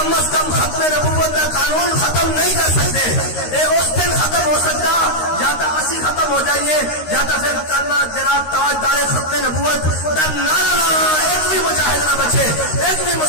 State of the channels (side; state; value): right; late; 13 ms